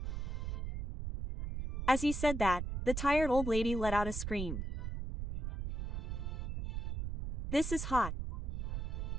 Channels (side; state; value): right; noise; rumble, 3 dB below the sound